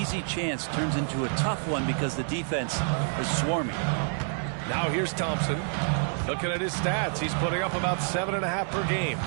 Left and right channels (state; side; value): silent; left; 59 dB below the other